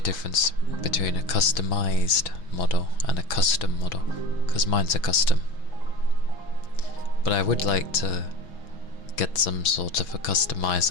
difference between a customized model and a custom model, because mine's a custom. But I would like to get some sort of a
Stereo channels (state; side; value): late; right; 6.1 ms